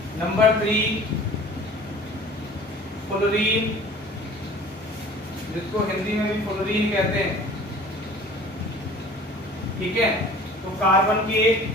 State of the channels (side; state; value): both; normal; correlation 0.45